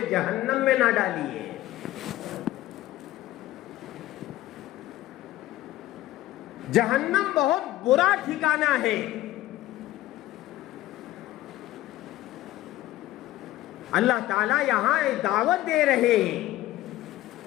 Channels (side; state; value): right; quieter; 15.2 dB